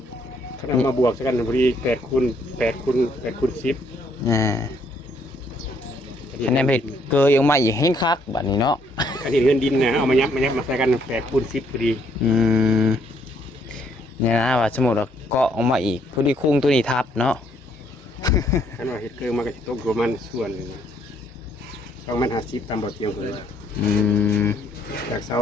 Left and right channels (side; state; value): both; normal; correlation 0.69